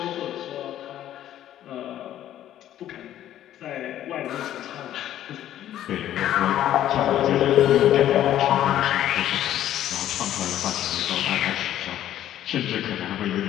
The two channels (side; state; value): right; quieter; 12.0 dB